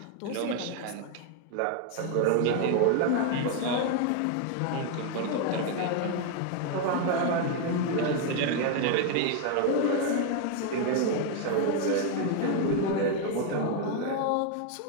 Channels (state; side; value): different; both; correlation 0.01